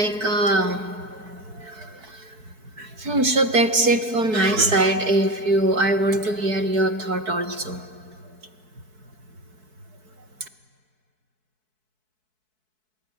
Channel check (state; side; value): late; left; 4.6 ms